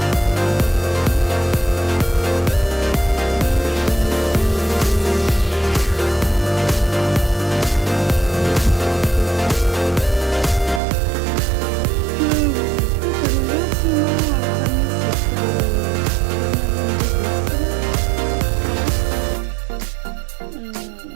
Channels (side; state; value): left; drops out; at 10.8 s